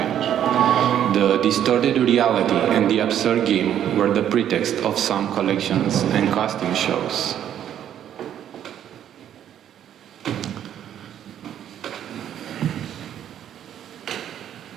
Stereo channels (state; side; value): quieter; left; 10.3 dB